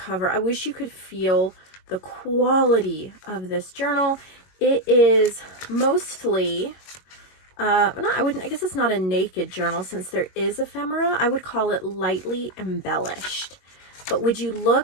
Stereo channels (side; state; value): right; late; 21 ms